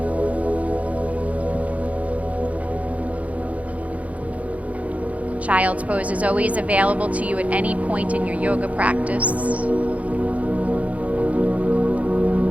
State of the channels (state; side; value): late; left; 0.067 ms